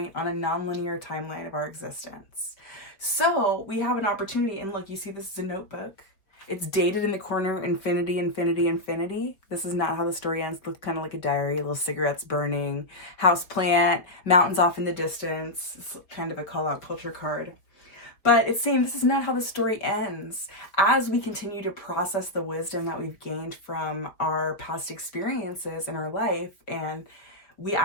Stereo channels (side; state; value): right; late; 4.8 ms